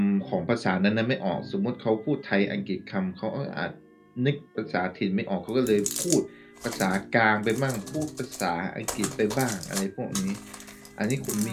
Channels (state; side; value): identical; both; correlation 1.00